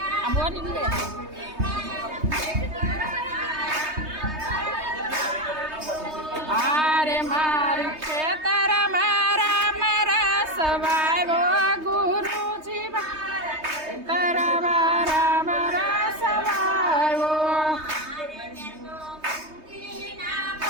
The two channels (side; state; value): left; late; 3.2 ms